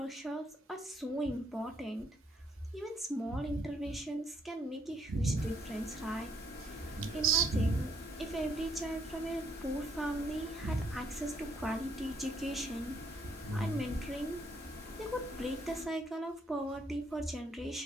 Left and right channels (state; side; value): normal; both; correlation 0.71